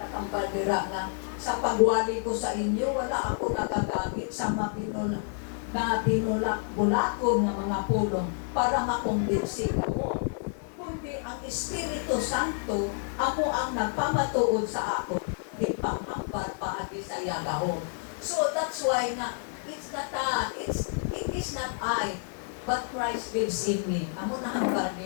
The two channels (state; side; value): silent; right; 59 dB below the other